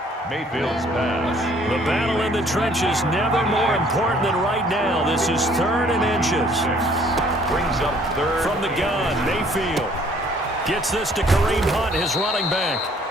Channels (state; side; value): normal; both; correlation 0.59